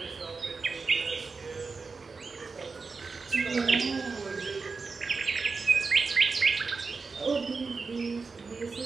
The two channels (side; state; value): left; quieter; 4.5 dB